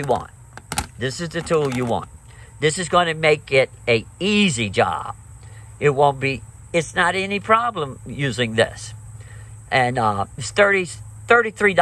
want. This is the tool you want. This is going to make it an easy job. It's not any problem using this. And it's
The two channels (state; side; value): identical; both; correlation 1.00